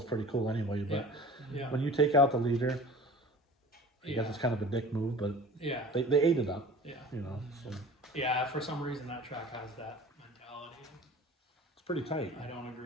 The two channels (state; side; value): normal; both; correlation 0.42